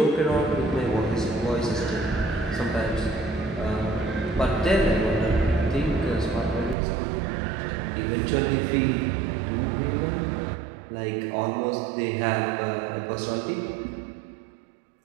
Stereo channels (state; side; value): drops out; left; at 6.8 s